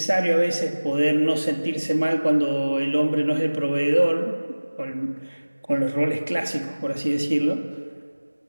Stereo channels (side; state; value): both; inverted; correlation -1.00